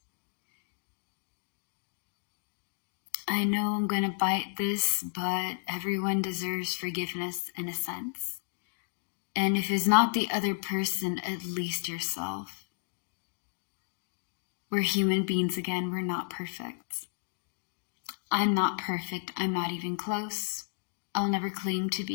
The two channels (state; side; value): silent; right; digital silence